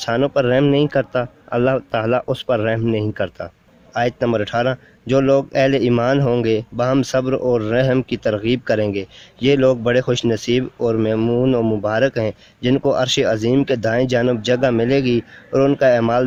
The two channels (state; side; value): identical; both; correlation 1.00